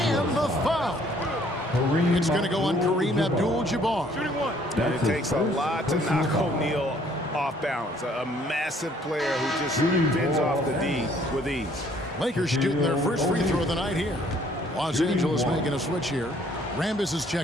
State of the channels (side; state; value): both; normal; correlation 0.61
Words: the foul. It's going to go on Kareem Abdul-Jabbar. It takes a lot to knock O'Neal off balance. A massive player who just bends off the D with ease. Lakers shooting their first free throw of the night here. Los Angeles making a switch here. Rambis is